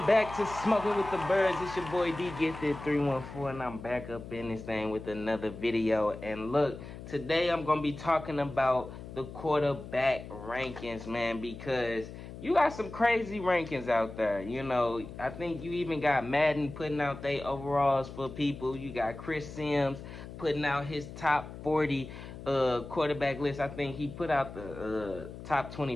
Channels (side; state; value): left; noise; hum, 12 dB below the sound